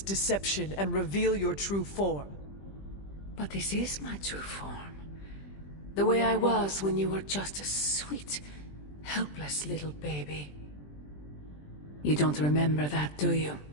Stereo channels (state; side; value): late; right; 20 ms